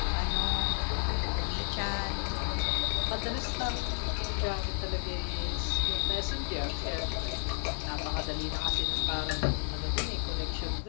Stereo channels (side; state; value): right; silent; digital silence